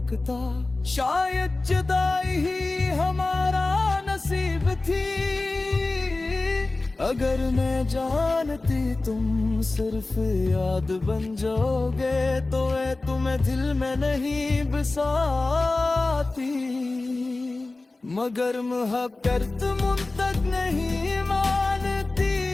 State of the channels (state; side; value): quieter; right; 3.2 dB